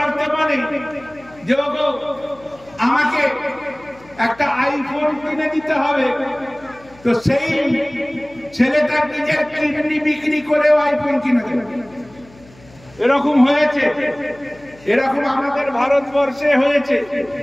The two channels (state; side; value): noise; left; hum, 25 dB below the sound